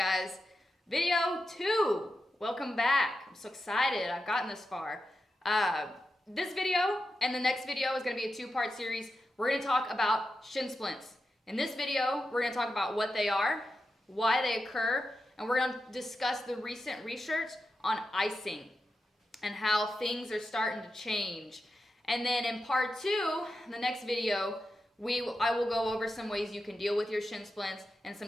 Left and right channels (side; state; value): both; normal; correlation 0.89